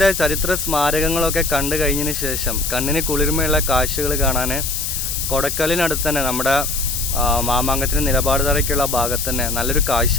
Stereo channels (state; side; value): noise; left; hiss, 3 dB below the sound